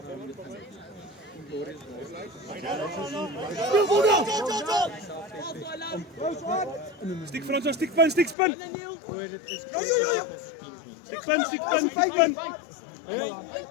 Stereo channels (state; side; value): drops out; right; at 8.3 s